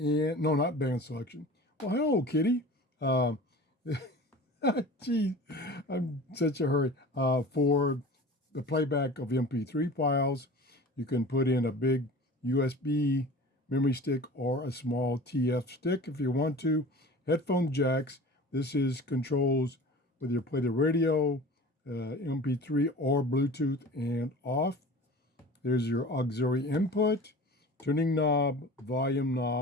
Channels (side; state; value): both; normal; correlation 0.39